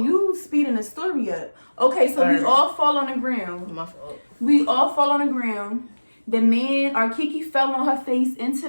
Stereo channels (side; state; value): both; inverted; correlation -1.00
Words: You speeding the story up. Okay, so we all fall on the ground. My fault. We all fall on the ground. The man, our Kiki fell on her face into